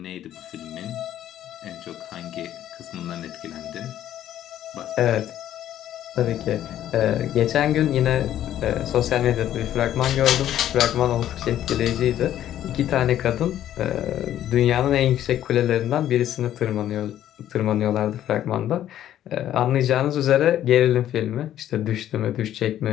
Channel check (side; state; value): right; quieter; 11.8 dB